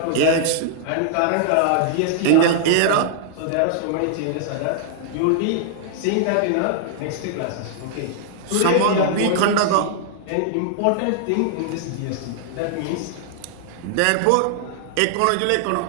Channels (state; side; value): different; both; correlation -0.01